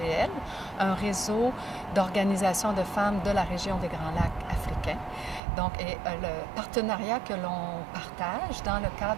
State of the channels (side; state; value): left; drops out; at 5.4 s